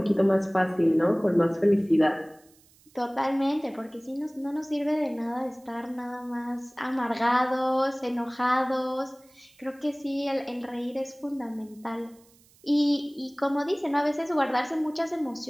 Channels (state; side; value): noise; right; hiss, 30 dB below the sound